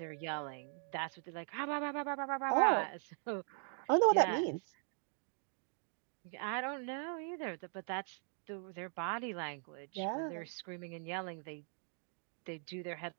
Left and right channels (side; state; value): left; silent; 51 dB below the other